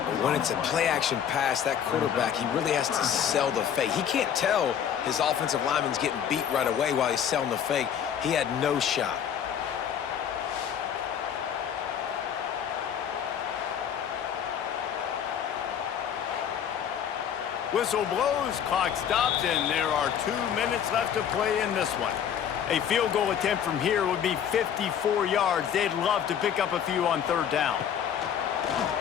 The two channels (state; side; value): quieter; right; 8.7 dB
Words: When it's a play-action pass, that quarterback, he really has to sell the fake. He can't tell his offensive lineman's getting beat right away while he's selling the fake. He had no shot. Whistle blows, clock stops, and there are 2 minutes left to play in this one. A field goal attempt from here would be 54 yards. They'd love to pick up a few on third down.